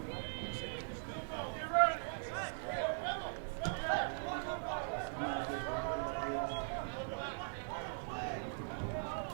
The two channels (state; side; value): silent; left; digital silence